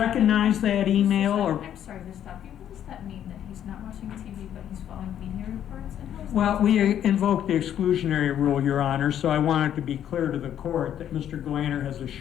that email? Or? I'm sorry to stop you. What does that mean, that he's not watching TV but he's following media reports? And how is Well, that we invoked the exclusionary rule, Your Honor, so I wanted to be clear to the court that Mr. Galanter has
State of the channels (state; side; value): quieter; right; 10.2 dB